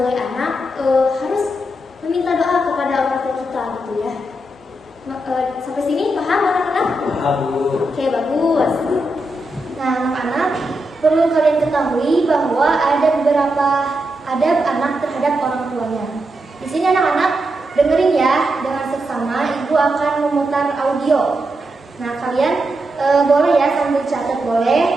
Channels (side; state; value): both; normal; correlation 0.85